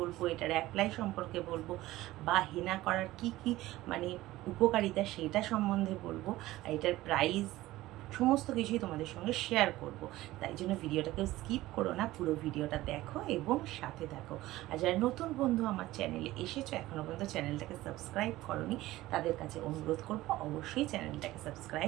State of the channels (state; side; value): quieter; left; 17.0 dB